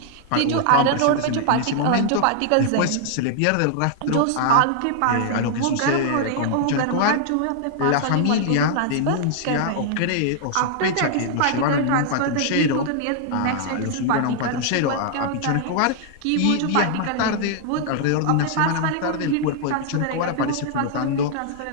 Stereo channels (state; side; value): different; both; correlation -0.01